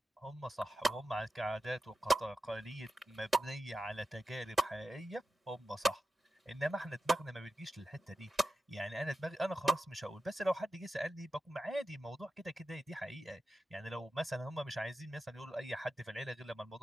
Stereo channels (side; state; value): both; normal; correlation 0.92